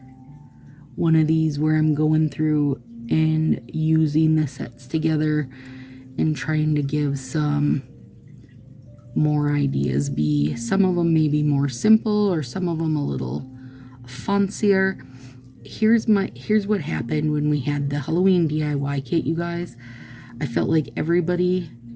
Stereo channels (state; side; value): identical; both; correlation 1.00